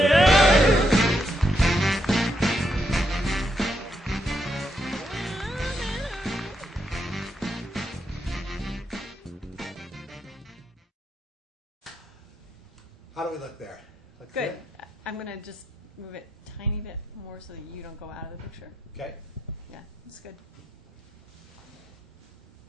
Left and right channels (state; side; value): normal; both; correlation 0.80